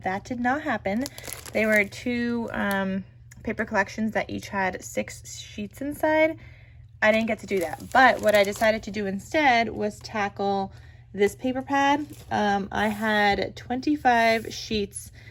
that did not happen. They were 2 paper collections that each had 6 sheets inside. I didn't get to do that, but what I decided to do instead was tackle this paper pad. I had 25 sheets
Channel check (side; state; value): both; identical; correlation 1.00